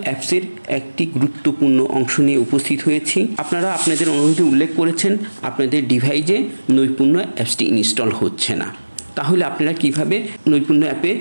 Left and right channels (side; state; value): both; inverted; correlation -1.00